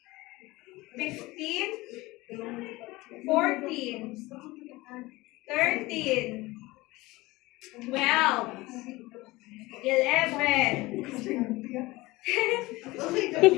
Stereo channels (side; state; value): right; quieter; 20.6 dB